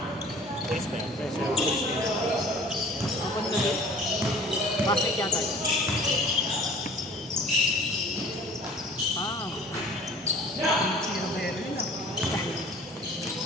Press pa yan. Press pa yan. Ako na doon. Basket yata yun. Ah. Sinabero yun ah.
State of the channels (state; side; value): normal; both; correlation 0.47